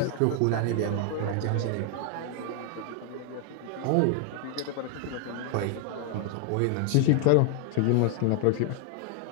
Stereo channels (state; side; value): different; both; correlation 0.00